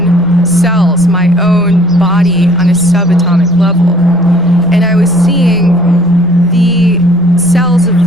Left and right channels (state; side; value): normal; both; correlation 0.56